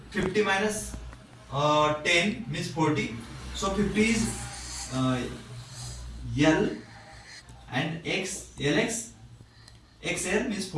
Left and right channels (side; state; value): both; identical; correlation 1.00